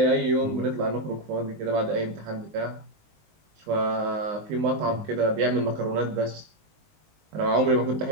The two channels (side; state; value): left; late; 19 ms